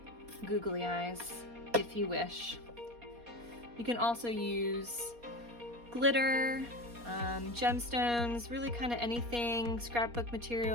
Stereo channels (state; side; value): late; left; 4.2 ms